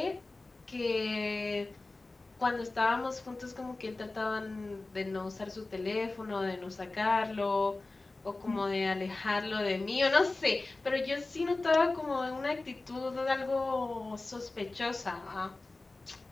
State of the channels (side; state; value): right; quieter; 3.2 dB